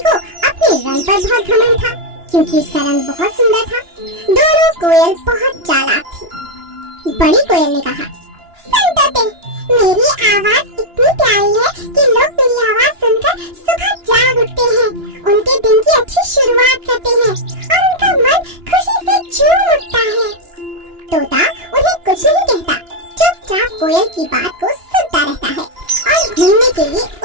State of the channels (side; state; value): left; late; 2.9 ms